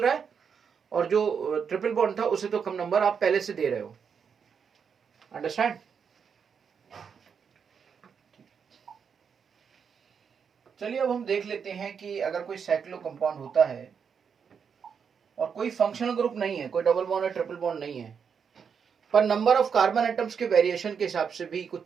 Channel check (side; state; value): left; quieter; 6.7 dB